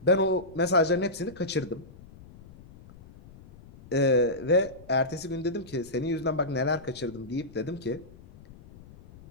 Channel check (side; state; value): left; noise; rumble, 21 dB below the sound